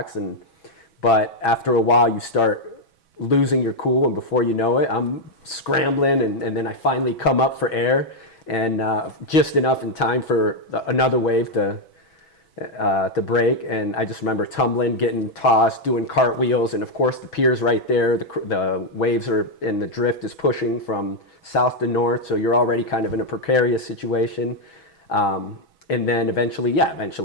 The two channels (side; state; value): right; late; 6.2 ms